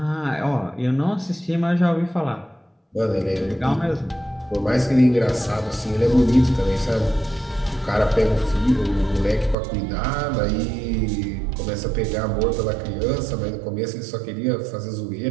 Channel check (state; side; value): drops out; left; at 9.6 s